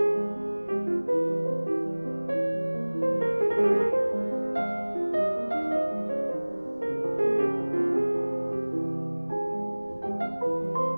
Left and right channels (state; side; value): inverted; both; correlation -1.00